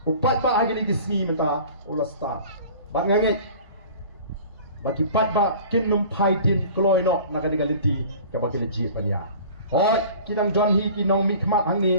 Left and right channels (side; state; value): both; inverted; correlation -0.44